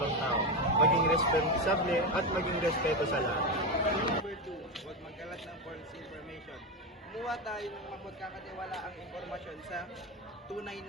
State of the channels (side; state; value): both; normal; correlation 0.14